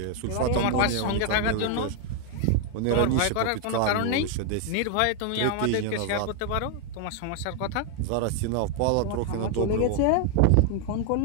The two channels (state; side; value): different; both; correlation 0.00